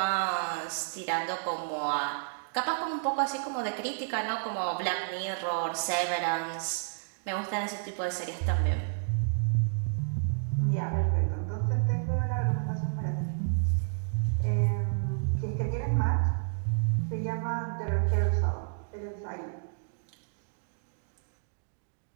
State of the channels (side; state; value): left; silent; digital silence